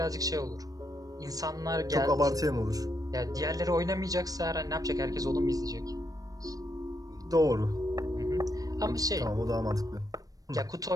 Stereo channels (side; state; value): left; late; 0.18 ms